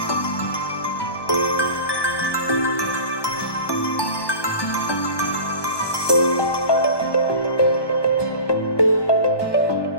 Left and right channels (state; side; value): late; right; 1.2 ms